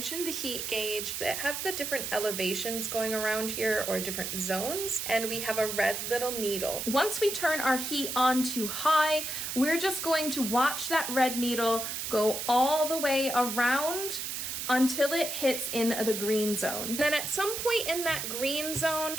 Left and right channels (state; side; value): noise; right; hiss, 4 dB below the sound